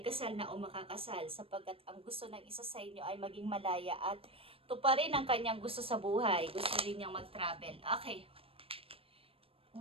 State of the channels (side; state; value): left; late; 0.27 ms